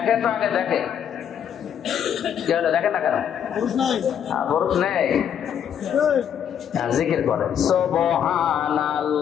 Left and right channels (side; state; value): right; quieter; 8.8 dB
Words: তো আগে, দেখেন দেখেন না কেন পুরুষ নেই? জিকির করেন